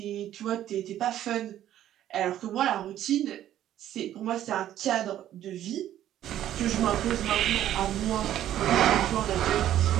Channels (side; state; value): left; quieter; 12.0 dB